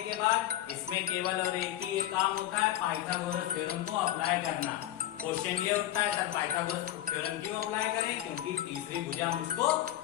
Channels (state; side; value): quieter; right; 13.4 dB